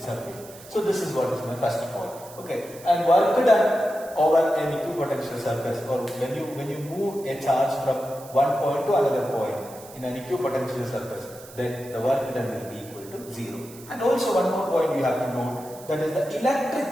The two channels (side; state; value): right; noise; hiss, 19 dB below the sound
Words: So this is what is my first point. Okay, and work done over an equipotential surface, or when you move a charge from one point to another point in an equipotential surface, then the work done will be equal to 0. And also one more point you have to note, that is the electric